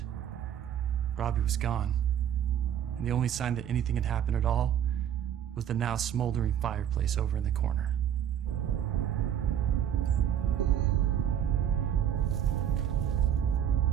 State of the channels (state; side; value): quieter; left; 9.6 dB